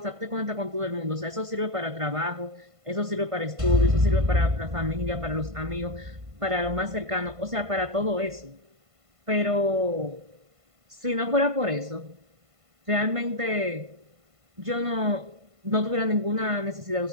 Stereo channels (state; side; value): late; left; 1.5 ms